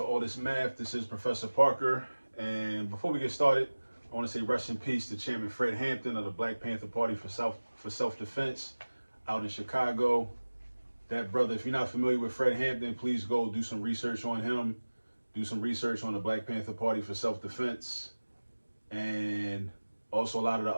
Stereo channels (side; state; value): both; inverted; correlation -1.00